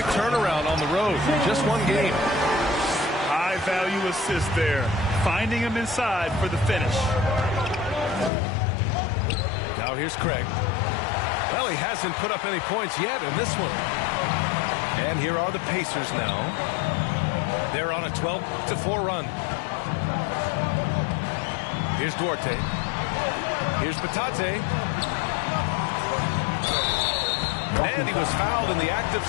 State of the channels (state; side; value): drops out; right; at 8.3 s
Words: turnaround on the road. Just one game. High-value assist there. Finding him inside for the finish. Now here's Craig. Well, he hasn't put up any points yet in this one. And here are the Pacers now. They're on a 12-4 run. Here's Duarte. Here's Batadze. And he was fouled in the act of